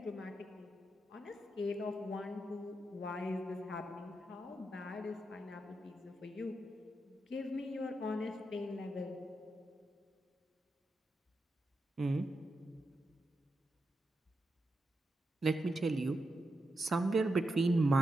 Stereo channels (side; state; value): both; normal; correlation 0.87